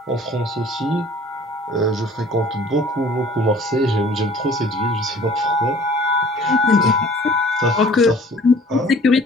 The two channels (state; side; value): normal; both; correlation 0.51